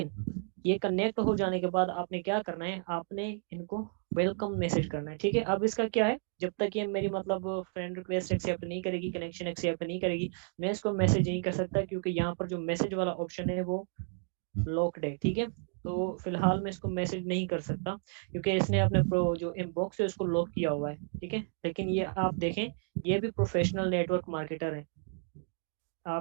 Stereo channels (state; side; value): silent; left; 56 dB below the other